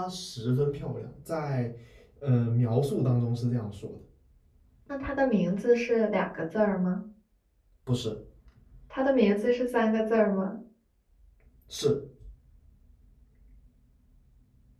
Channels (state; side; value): identical; both; correlation 1.00